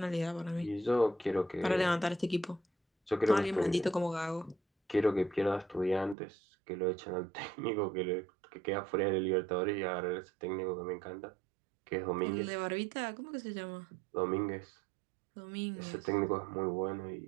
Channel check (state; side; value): drops out; left; at 6.2 s